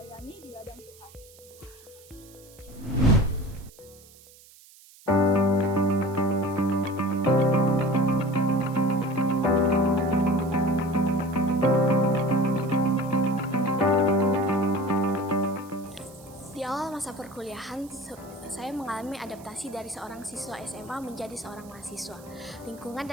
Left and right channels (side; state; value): right; noise; hiss, 24 dB below the sound